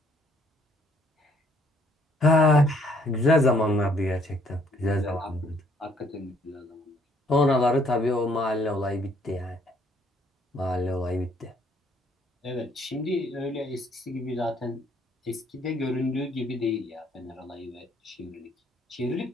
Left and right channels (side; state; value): both; normal; correlation 0.65